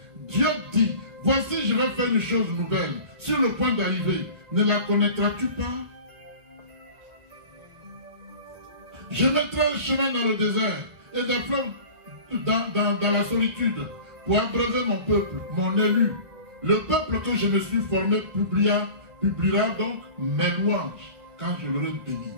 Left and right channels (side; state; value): left; late; 1.4 ms